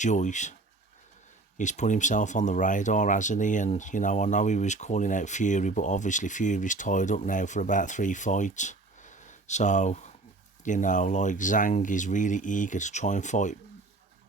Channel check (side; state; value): left; quieter; 3.3 dB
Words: he's put himself on the radar, hasn't he? And, I know he was calling out Fury, but obviously Fury's tied up now for about 3 fights. So, Zhang is really eager to try and fight